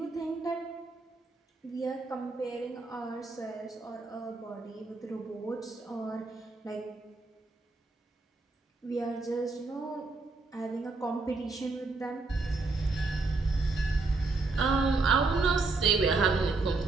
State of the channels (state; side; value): quieter; left; 3.7 dB